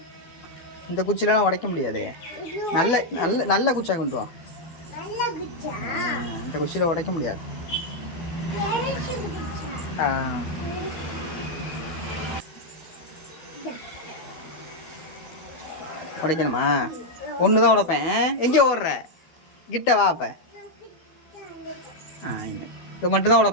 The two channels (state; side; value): late; right; 12 ms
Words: இந்த குச்சிலாம் உடைக்க முடியாது. நல்ல நல்ல நல்ல குச்சியாக கொண்டு வா. இந்த குச்சியில் உடைக்க முடியாது. உடைக்கணுமா? ஒன்று தான் உடைப்பேன். எங்கே ஓடுற? கிட்ட வா. அப்போ இது மட்டும் தான்